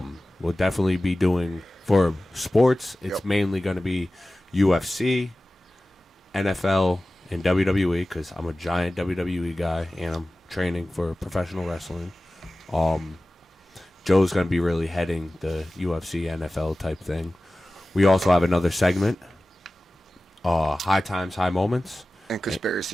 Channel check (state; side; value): normal; both; correlation 0.96